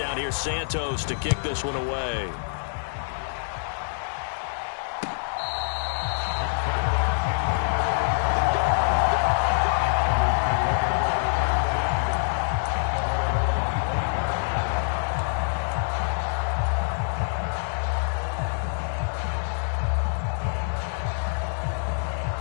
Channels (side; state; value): right; silent; digital silence